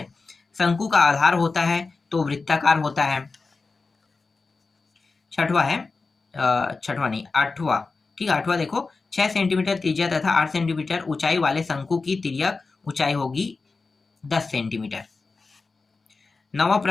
शंकु का आधार होता है तो वृत्ताकार होता है। छठवा है, छठवा नहीं, आठवां, ठीक है, आठवां देखो, 6 सेंटीमीटर त्रिज्या तथा 8 सेंटीमीटर ऊंचाई वाले शंकु की तिर्यक ऊंचाई होगी 10 सेंटीमीटर। नवा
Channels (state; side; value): quieter; right; 4.1 dB